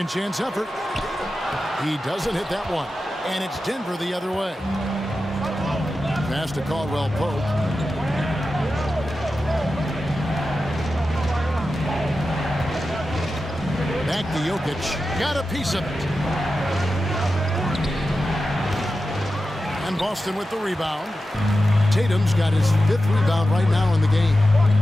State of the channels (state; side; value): normal; both; correlation 0.92